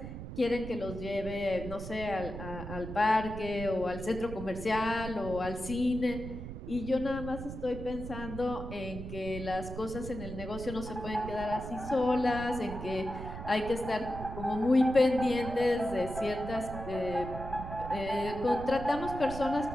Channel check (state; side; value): noise; right; rumble, 9 dB below the sound